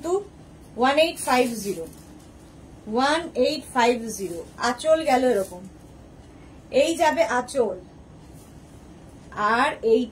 1850। 1850। আঁচল গেল এরকম, এই যাবে আঁচল, আর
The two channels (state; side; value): identical; both; correlation 1.00